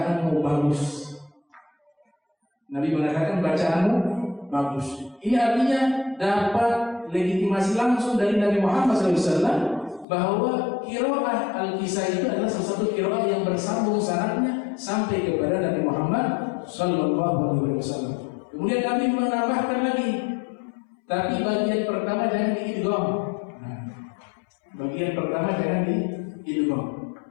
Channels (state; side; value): drops out; right; at 10.1 s